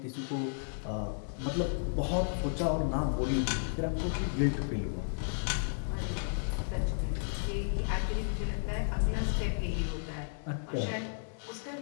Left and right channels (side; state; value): right; silent; digital silence